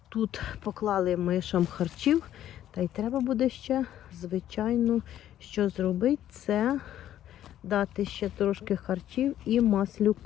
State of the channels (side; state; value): right; quieter; 11.8 dB